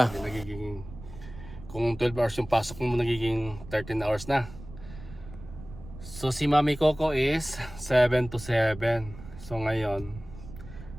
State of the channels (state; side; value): noise; right; rumble, 15 dB below the sound